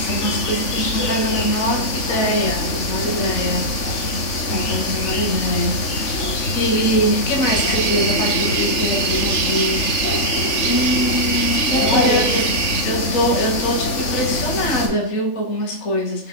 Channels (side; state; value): right; late; 3.5 ms